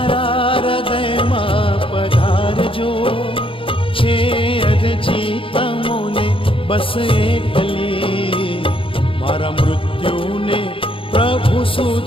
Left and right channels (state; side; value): late; right; 0.26 ms